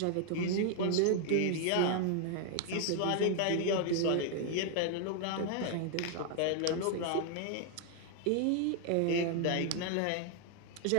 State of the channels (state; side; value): different; both; correlation 0.00